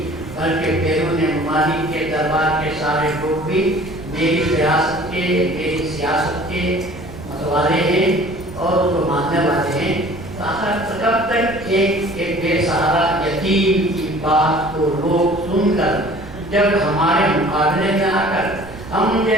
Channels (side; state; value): right; noise; rumble, 15 dB below the sound